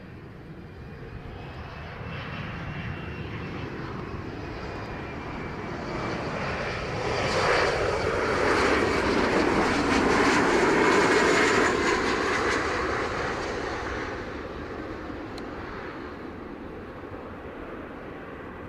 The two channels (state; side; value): identical; both; correlation 1.00